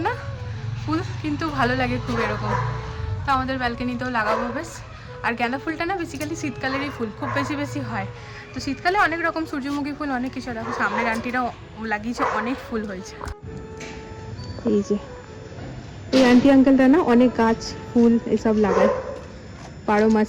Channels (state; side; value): identical; both; correlation 1.00